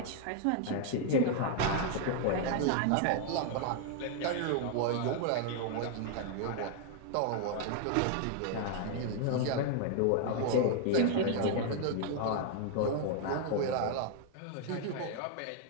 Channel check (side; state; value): both; different; correlation 0.00